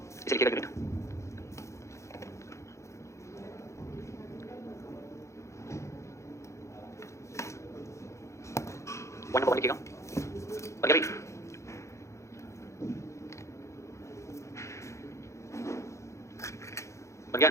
इसे लिखिएगा यूनिट। वन नंबर वन लिखिएगा। और क्या भाई? बन गया?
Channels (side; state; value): right; late; 0.14 ms